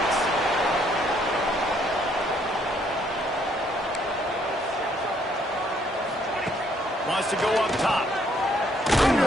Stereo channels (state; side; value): normal; both; correlation 0.67